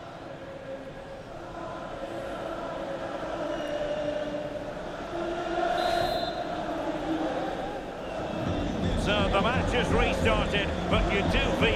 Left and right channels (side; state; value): both; identical; correlation 1.00